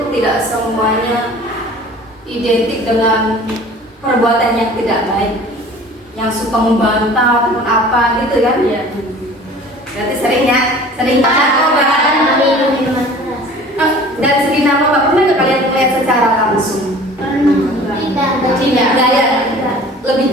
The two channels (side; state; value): both; normal; correlation 0.45